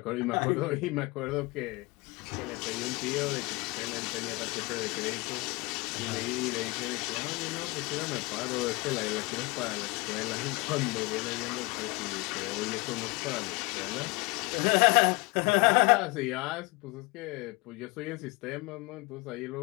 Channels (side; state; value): right; quieter; 25.4 dB